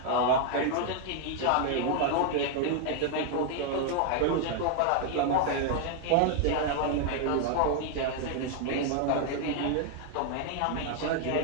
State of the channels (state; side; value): different; both; correlation 0.00